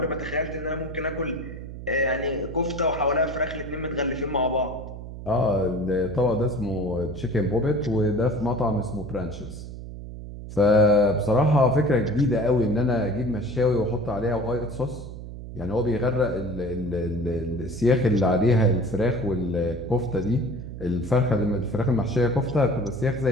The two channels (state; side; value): noise; right; hum, 11 dB below the sound